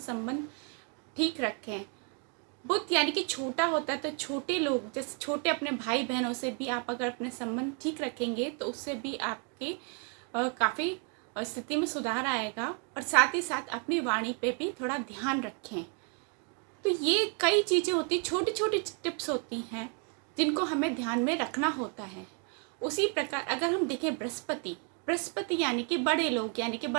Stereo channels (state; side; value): quieter; left; 37.6 dB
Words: संबंध ठीक रखें। बुध यानी कि छोटा होता है, तो छोटे लोग, जैसे छोटे अपने भाई बहनों से भी आप अगर अपने संबंध ठीक रखेंगे तो उससे भी आपके काफ़ी स्थिति में सुधार आएगा। और साथ ही साथ अपनी वाणी पे भी थोड़ा ध्यान रखें। तो ये कई चीज़ें होती, छोटी छोटी टिप्स होती हैं जिनको हमें ध्यान में रखना होता है। उसी प्रकार अगर हम देखें बृहस्पति यानी कि बड़े लोग, यानी कि